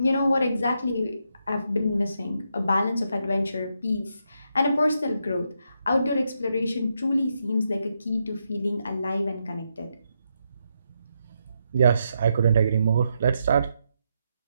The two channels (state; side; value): inverted; both; correlation -0.81